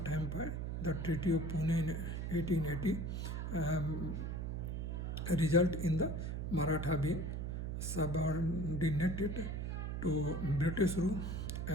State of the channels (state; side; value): noise; right; hum, 2 dB below the sound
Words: Empire. The Treaty of Pune in 1880 result in the Maratha being subordinated to British rule